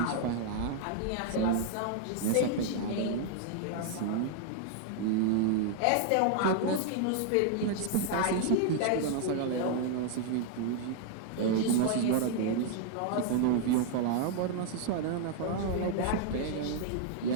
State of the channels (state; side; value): different; both; correlation 0.00